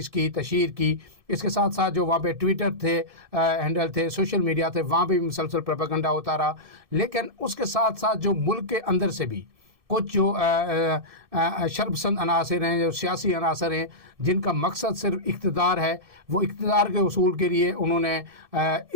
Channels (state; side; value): late; left; 1.7 ms